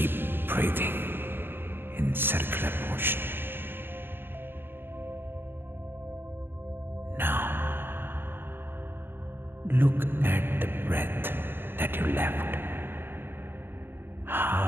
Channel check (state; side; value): late; left; 0.10 ms